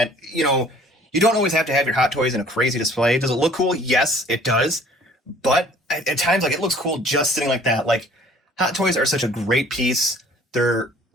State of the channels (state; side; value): normal; both; correlation 0.54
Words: you know, you don't always have to have your Hot Toys in a crazy display. Does it look cool? Yes, it does. But at times, like, it looks cool just sitting like that. Like, Hot Toys are such a great piece. They're